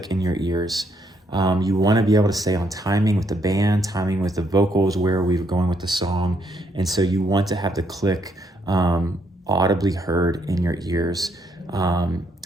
in your ears. You want to be able to stay on timing with the band, timing with the vocals, where we're going with the song. And so you want to have the click audibly heard in your ears.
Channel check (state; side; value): normal; both; correlation 0.73